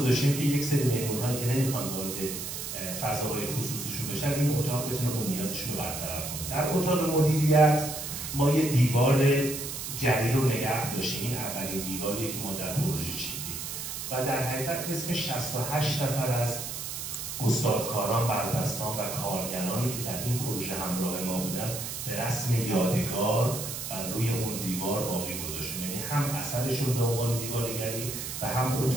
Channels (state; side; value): noise; right; hiss, 6 dB below the sound